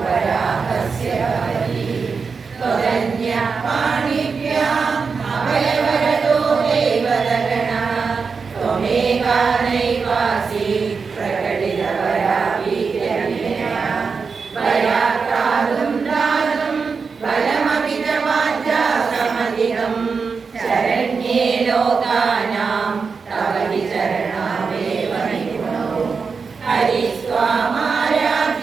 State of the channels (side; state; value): left; quieter; 5.2 dB